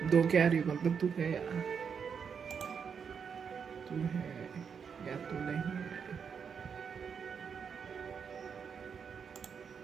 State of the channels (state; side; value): quieter; left; 6.6 dB